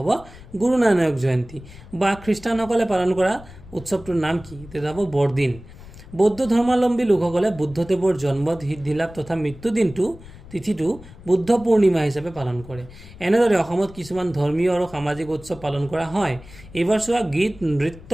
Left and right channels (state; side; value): noise; left; rumble, 18 dB below the sound